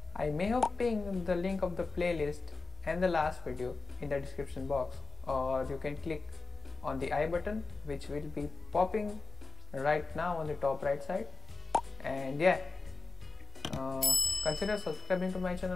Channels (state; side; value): quieter; right; 4.1 dB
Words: I may have pinned the link of the playlist and the last video in the description box, or you can click on the I button which will be popping right now on the top right side. And yeah, consider subscribing to my